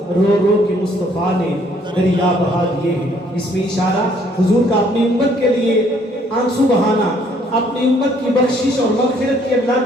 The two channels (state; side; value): normal; both; correlation 0.64